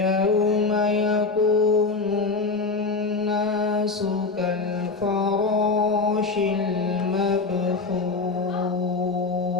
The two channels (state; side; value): quieter; right; 4.0 dB